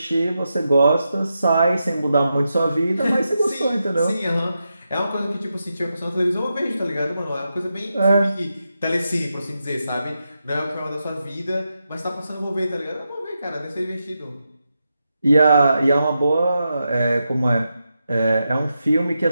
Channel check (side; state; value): both; inverted; correlation -0.87